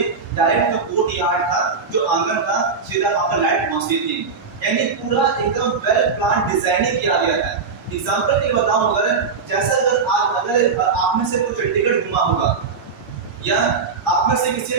डायरेक्ट जो कोर्ट यार्ड था, जो आंगन था, सीधा वहां पर लाइट पहुंचती थी। यानी पूरा एकदम वेल प्लान डिजाइनिंग किया गया था। एग्जांपल के बताऊं, अगर जैसा अगर आप में से कोई चंडीगढ़ घुमा होगा या आप में से किसी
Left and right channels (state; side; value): quieter; left; 5.1 dB